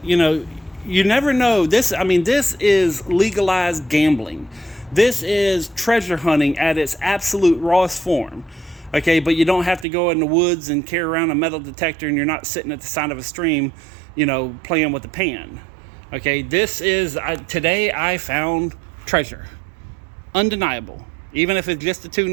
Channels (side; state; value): left; drops out; at 9.9 s